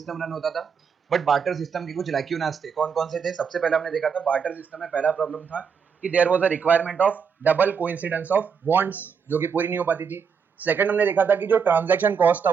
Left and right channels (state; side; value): quieter; left; 6.4 dB